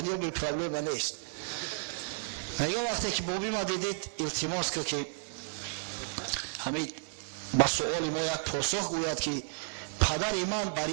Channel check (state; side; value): silent; left; 56 dB below the other